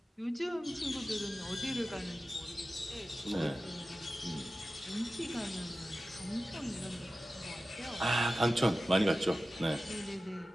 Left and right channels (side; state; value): both; normal; correlation 0.95